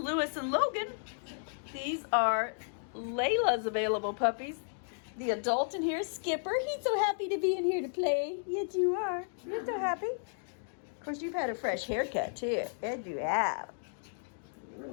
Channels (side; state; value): right; silent; digital silence